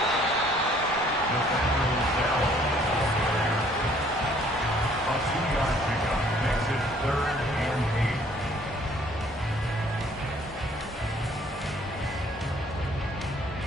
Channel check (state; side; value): normal; both; correlation 0.60